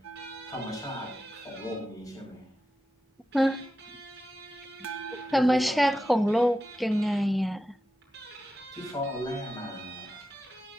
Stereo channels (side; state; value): both; normal; correlation 0.90